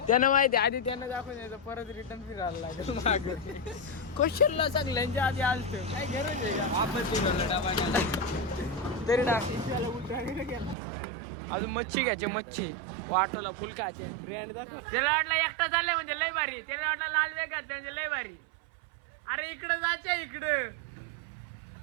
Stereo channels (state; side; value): drops out; left; at 10.8 s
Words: त्यानं माहिती आधी त्यानं दाखवून यायचं, परत रिटर्न फिरायला लागेल मागं. क्वेश्चनला सगळ्यांच्या आधी आलत. काय गरज आहे का? आपण तरी अजून मच्छी घ्यायची. मच्छी वाटोला फुल खायचे. ब्रँड दाखव. त्याला वाटलं एकटा चाललंय म्हणजे लय भारी. त्याला वाटलं लाल वेग घातलं म्हणजे लय भारी. अरे इकडं जायचे, इकडे